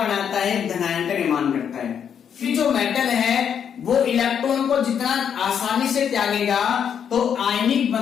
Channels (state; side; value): quieter; right; 8.0 dB